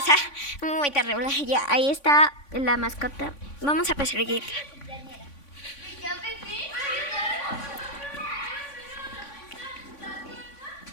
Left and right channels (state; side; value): late; right; 3.5 ms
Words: muy terrible. Ya, ahí está la mascota. Vamos a perseguir.